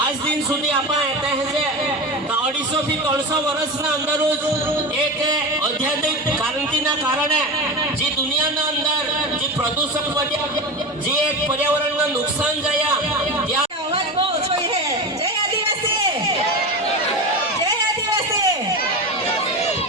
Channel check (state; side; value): normal; both; correlation 0.24